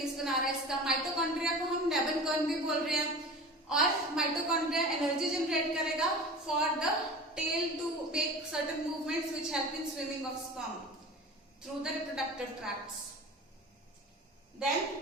बना रहा है इसका। माइटोकॉन्ड्रिया को हम नेबनकॉर्न भी बोल रहे हैं। और माइटोकॉन्ड्रिया एनर्जी जनरेट करेगा for the tail to make certain movements which help in swimming of sperm through the reproductive tracts. Then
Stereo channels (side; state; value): both; normal; correlation 0.36